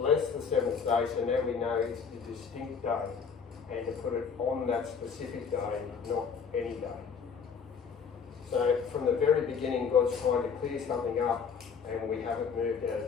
the 7th day, so now we know it's a distinct day, and to put it on that specific day, not any day. So from the very beginning, God's trying to clear something up, and we haven't moved out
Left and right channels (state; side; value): quieter; right; 6.1 dB